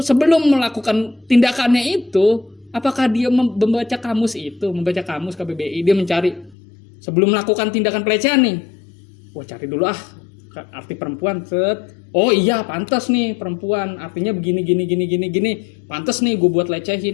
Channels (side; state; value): right; drops out; at 6.6 s